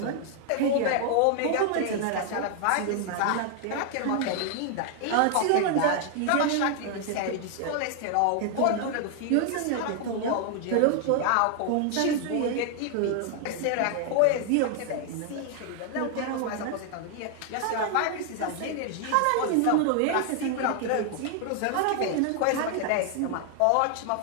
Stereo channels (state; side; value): different; both; correlation 0.00